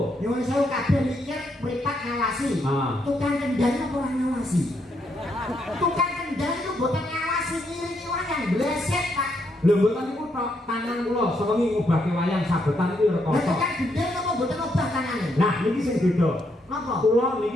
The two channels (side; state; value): both; normal; correlation 0.77